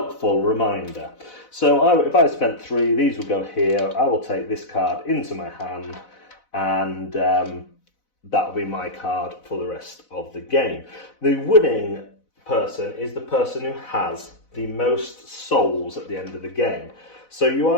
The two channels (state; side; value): late; right; 4.0 ms